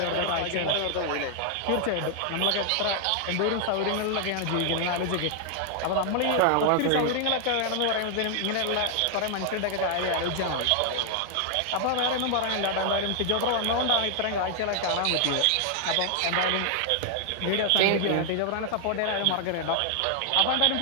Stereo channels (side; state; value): both; different; correlation 0.00